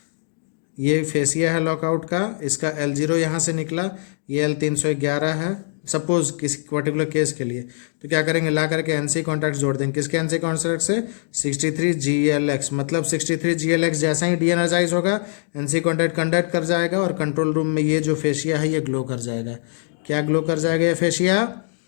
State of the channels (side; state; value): right; silent; digital silence